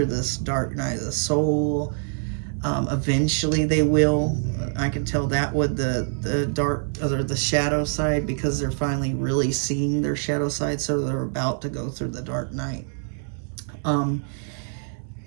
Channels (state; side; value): silent; left; 59 dB below the other